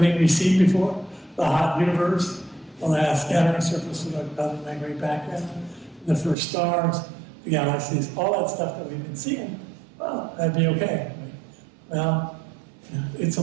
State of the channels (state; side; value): drops out; left; at 6.4 s